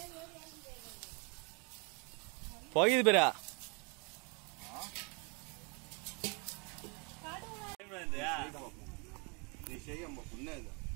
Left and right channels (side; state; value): left; quieter; 33.0 dB